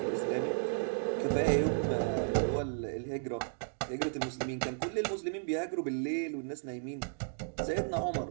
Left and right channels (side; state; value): left; silent; digital silence